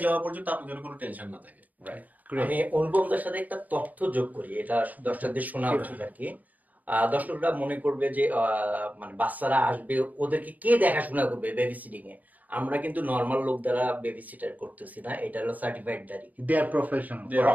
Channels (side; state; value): left; late; 0.079 ms